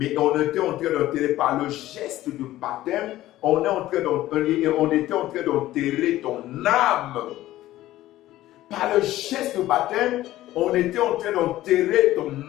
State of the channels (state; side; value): quieter; right; 15.1 dB